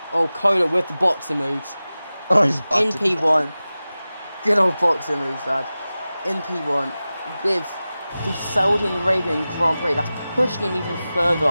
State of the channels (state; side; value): inverted; both; correlation -0.96